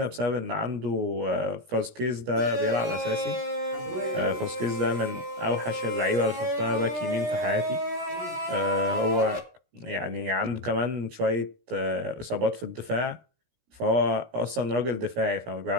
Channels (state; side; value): late; left; 17 ms